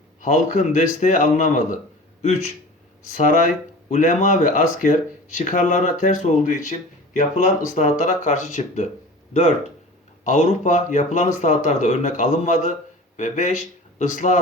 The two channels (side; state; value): both; normal; correlation 0.38